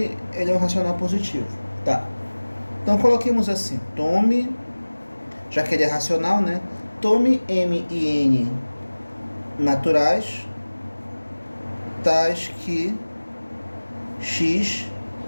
ele é um racional positivo, tá? Então, coloquemos assim, tome, já que ele é racional, né? Tome m e n naturais, tais que x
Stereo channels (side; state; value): both; inverted; correlation -1.00